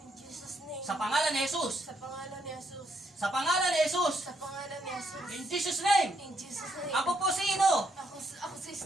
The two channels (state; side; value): normal; both; correlation 0.75